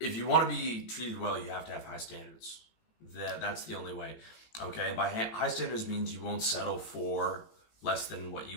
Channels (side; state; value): right; late; 18 ms